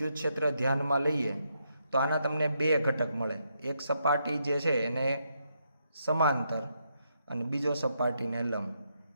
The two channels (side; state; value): both; inverted; correlation -0.79